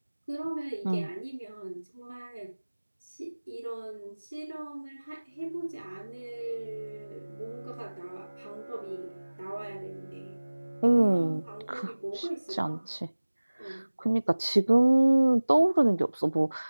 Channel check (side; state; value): both; inverted; correlation -1.00